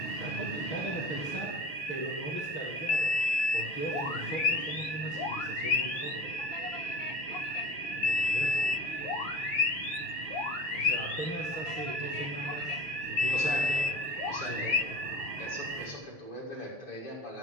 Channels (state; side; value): late; right; 7.2 ms